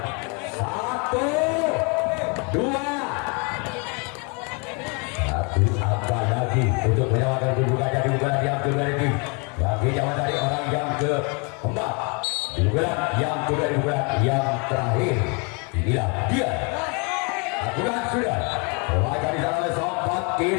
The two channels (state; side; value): quieter; right; 33.2 dB